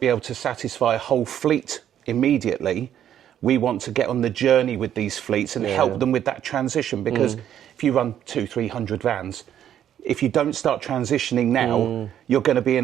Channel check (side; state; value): left; quieter; 10.4 dB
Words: able to satisfy a whole fleet immediately, we want to get on the journey with these fleets and help them with that transition, because if you run 200-300 vans, if you don't start transitioning now, you're going to be in